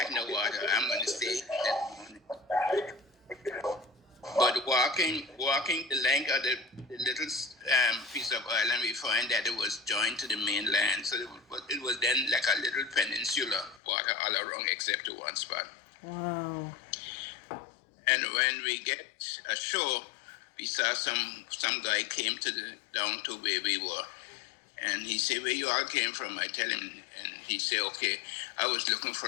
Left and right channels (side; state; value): right; drops out; at 13.8 s